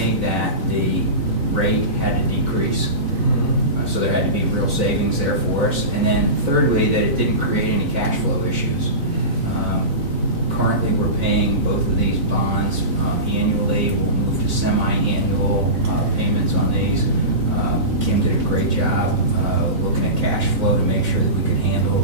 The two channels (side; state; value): left; late; 4.0 ms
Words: that the rate had to decrease. So there had to be real savings there for us. And then thirdly, that it didn't create any cash flow issues. Currently, we're paying both of these bonds annually. We'll move to semi-annual payments on these. Kim did a great job looking at cash flow to make sure that we could handle